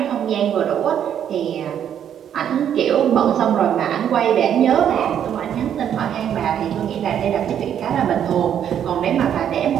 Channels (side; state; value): left; quieter; 9.4 dB